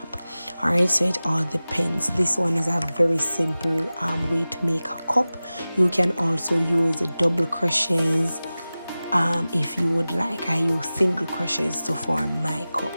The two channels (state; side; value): inverted; both; correlation -0.97